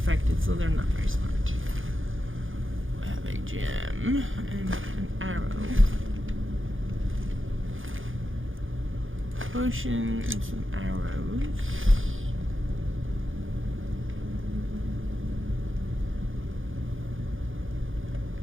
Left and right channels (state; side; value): late; left; 0.58 ms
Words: so they're not very smart. We have a gem and an arrow. Potion and some arrows.